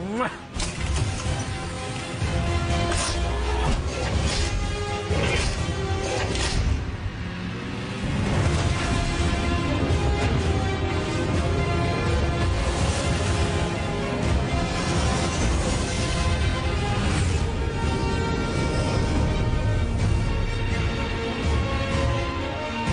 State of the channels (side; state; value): both; identical; correlation 1.00